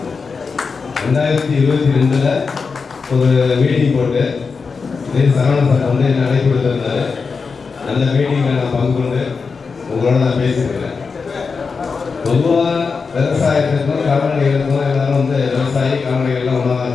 2022 ஒரு மீட்டிங் போட்டு சரவணன் சார் வந்து என்ன அழைப்பு கொடுத்திருந்தாரு. அந்த மீட்டிங்கில் நான் பங்கு கொண்டு உங்களோட நான் பேசியிருக்கிறேன். பொதுவாக விவசாயத்துக்கும் கால்நடைகளுக்கும் எல்லாரும் வந்து விவசாயி கால்நடைகள்லாம் ஒன்றா தான்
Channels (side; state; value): right; quieter; 5.0 dB